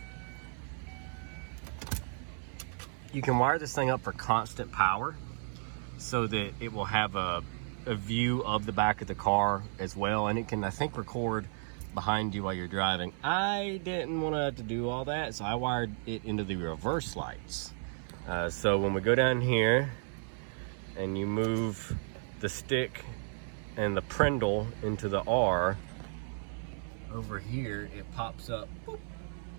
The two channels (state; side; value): silent; left; 56 dB below the other